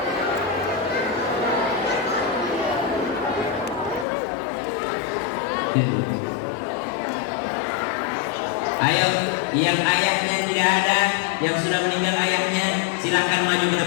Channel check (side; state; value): right; drops out; at 4.0 s